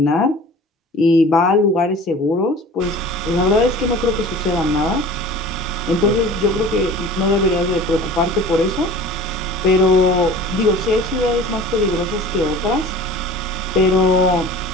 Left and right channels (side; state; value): both; normal; correlation 0.41